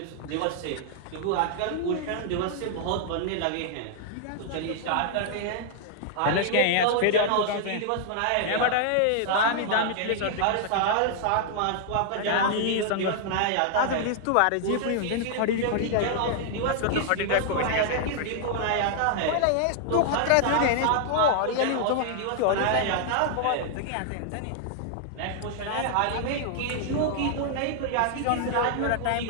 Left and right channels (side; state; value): both; different; correlation -0.01